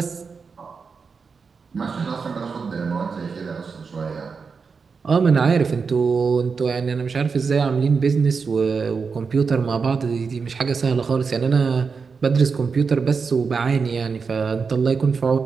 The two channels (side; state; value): left; quieter; 5.3 dB